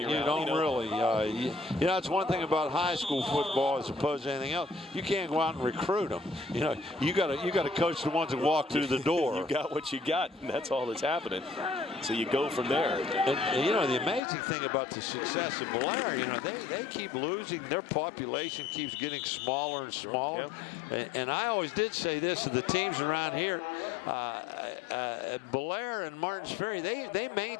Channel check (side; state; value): right; drops out; at 14.2 s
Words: really. You know, it's one thing about high school football as opposed to anything else. You can't go out and recruit them. You know, you got to coach the ones that walk through the door. You got what you got, and that's all that's happening. So you go from there. And you know, the amazing thing about the success of Bellaire, you know, they keep losing. Their population keeps getting smaller and smaller. Yep. And I always did say this to the teams around here, Bellaire and Martins Ferry, they